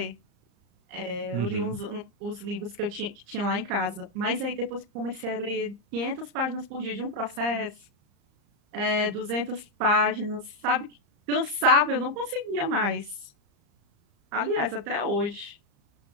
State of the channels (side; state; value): left; late; 35 ms